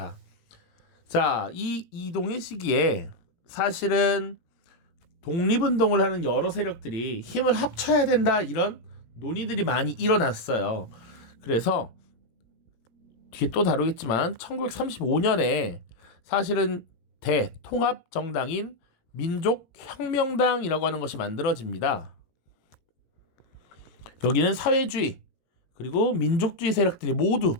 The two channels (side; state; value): right; late; 18 ms